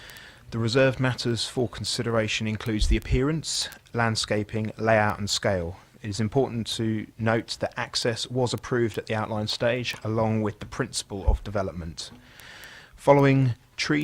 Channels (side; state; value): both; identical; correlation 1.00